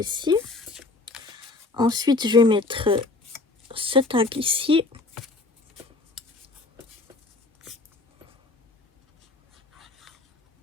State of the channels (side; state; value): right; quieter; 3.4 dB